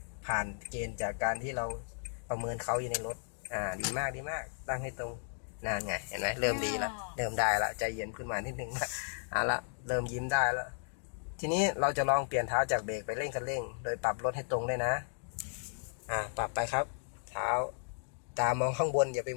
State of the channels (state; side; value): silent; right; digital silence